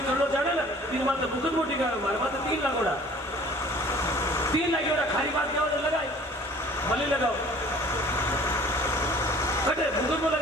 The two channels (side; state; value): both; normal; correlation 0.50